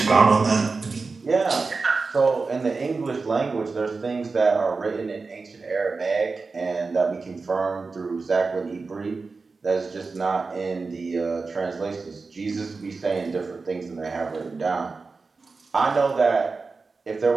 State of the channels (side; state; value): left; quieter; 4.2 dB